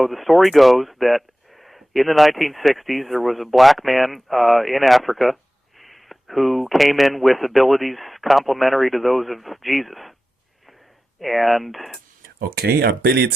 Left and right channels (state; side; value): normal; both; correlation 0.95